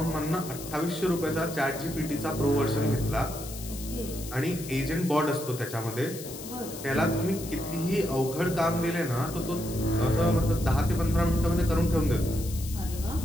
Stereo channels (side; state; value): left; noise; hiss, 12 dB below the sound